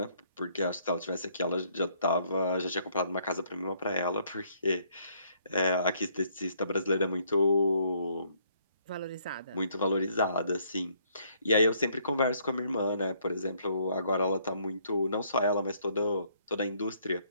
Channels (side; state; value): both; inverted; correlation -0.67